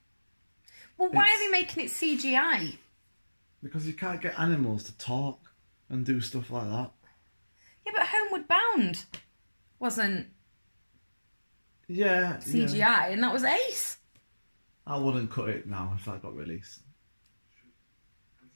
Well, why are they making it CGI? Because you can't get animals to talk and do stuff like that. Yeah, but Homeward Bound wasn't CGI, and that was ace. I wouldn't cut it now if that got released.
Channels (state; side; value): inverted; both; correlation -1.00